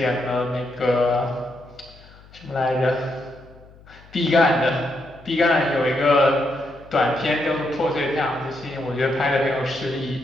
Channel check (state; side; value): noise; left; hum, 24 dB below the sound